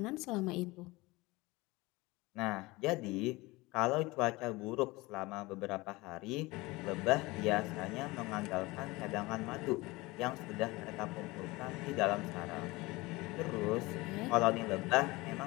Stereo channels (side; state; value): right; quieter; 22.0 dB